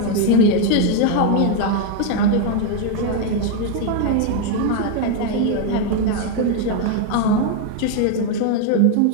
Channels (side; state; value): both; different; correlation 0.01